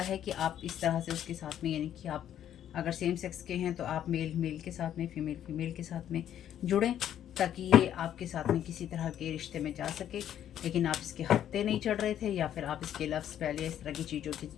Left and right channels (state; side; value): quieter; right; 10.6 dB